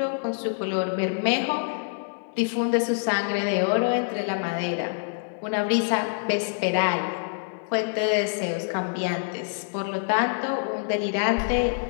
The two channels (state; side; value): silent; right; 61 dB below the other